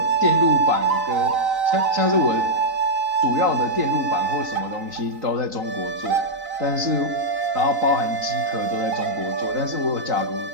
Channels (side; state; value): left; late; 3.9 ms